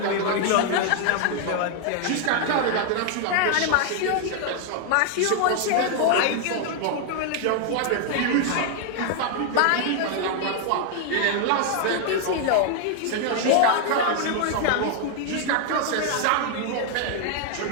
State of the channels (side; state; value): both; different; correlation 0.00